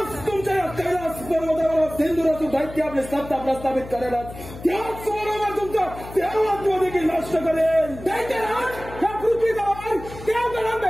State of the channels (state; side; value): noise; left; hum, 14 dB below the sound